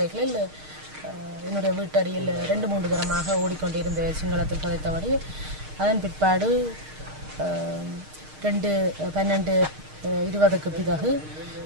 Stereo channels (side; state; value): left; late; 6.5 ms